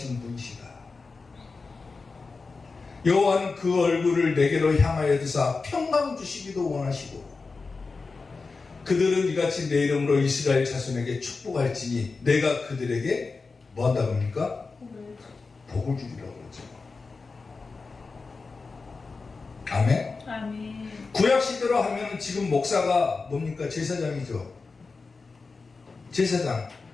분이시다. 여호와는 그 얼굴을 내게로 향하여 드사 평강 주시기도 원하시고 그들은 이같이 내 이름으로 이스라엘 자손에게 축복할지니 내가 그들에게 뭐 한다고 합니까? 복을 주리라고 그러죠. 아멘. 아멘. 구약 시대로 하면 지금 목사가 뭡니까? 제사장이죠. 제사장.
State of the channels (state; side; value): quieter; right; 4.2 dB